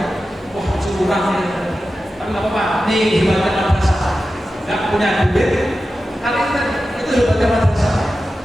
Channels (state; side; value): normal; both; correlation 0.93